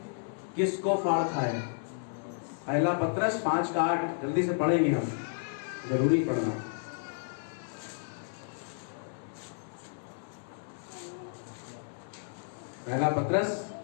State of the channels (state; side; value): silent; right; 56 dB below the other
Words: किसको फाड़ खाए। पहला पत्रस 5:8 जल्दी से पढ़ेंगे हम, जरूरी पढ़ना। पहला पत्रस